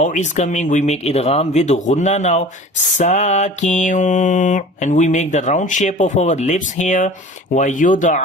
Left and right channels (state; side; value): normal; both; correlation 0.41